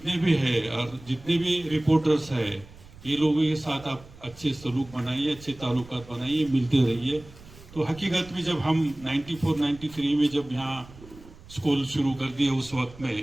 भी हैं और जितने भी रिपोर्टर्स हैं, ये लोगों के साथ आप अच्छे सलूक बनाइए, अच्छे ताल्लुकात बनाइए, मिलते रहिए। तो हकीकत में जब हम 94-93 में जब यहाँ स्कूल शुरू कर दिए, उस वक्त में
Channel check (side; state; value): right; noise; rumble, 20 dB below the sound